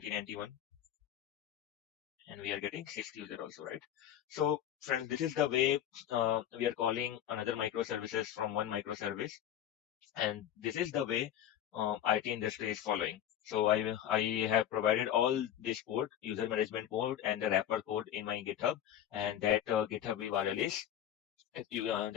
and we are getting sixth user also, right? So friends, this is the way we are calling another microservices from one microservice. And this is the way IT industry is following. So I have provided all this code, user management code and the wrapper code in my GitHub, and that GitHub URL is that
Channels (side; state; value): right; quieter; 10.8 dB